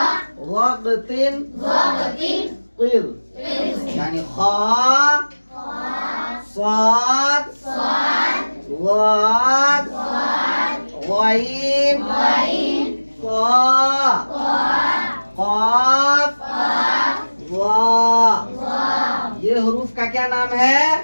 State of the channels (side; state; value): both; inverted; correlation -1.00